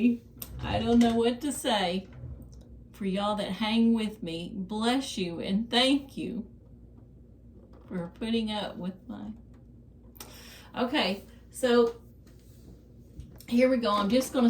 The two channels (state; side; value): identical; both; correlation 1.00